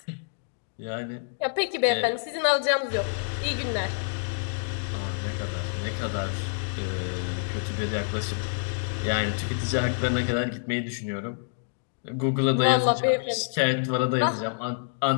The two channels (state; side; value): silent; right; digital silence